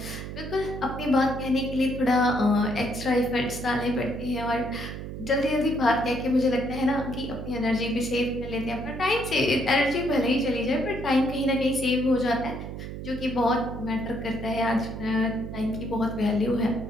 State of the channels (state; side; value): noise; right; hum, 8 dB below the sound